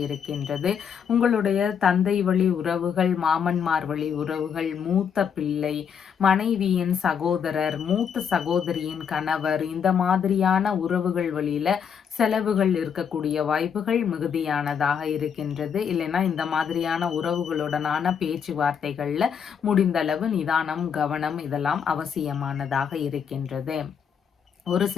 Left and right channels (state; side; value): quieter; right; 7.3 dB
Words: இருக்கின்றது. உங்களுடைய தந்தை வழி உறவுகள், மாமன்மார் வழி உறவுகள், மூத்த பிள்ளை, மனைவியின் சகோதரர், மூத்த சகோதரியின் கணவர், இந்த மாதிரியான உறவுகள் வழியில செலவுகள் இருக்கக்கூடிய வாய்ப்புகள் மிகுதியானதாக இருக்கின்றது. இல்லைன்னா இந்த மாதிரியான உறவுகளுடனான பேச்சுவார்த்தைகள்ல முடிந்தளவு நிதானம், கவனம் இதெல்லாம் அவசியமானதாக இருக்கின்றது. ஒரு